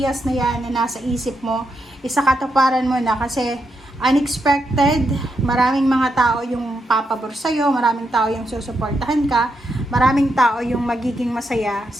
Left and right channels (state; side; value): normal; both; correlation 0.83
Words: na yan na nasa isip mo, isakatuparan mo na kasi unexpected, maraming mga tao yung papabor sa'yo, maraming tao yung susuportahan ka, maraming tao yung magiging masaya